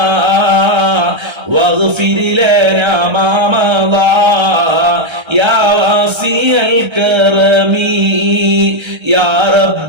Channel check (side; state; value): left; late; 1.3 ms